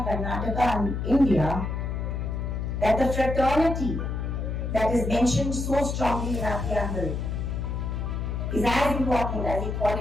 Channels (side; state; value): left; noise; hum, 2 dB below the sound